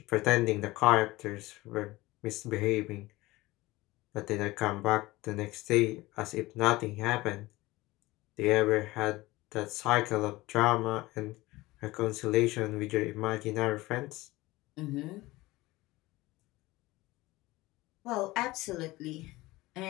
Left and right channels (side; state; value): right; quieter; 19.7 dB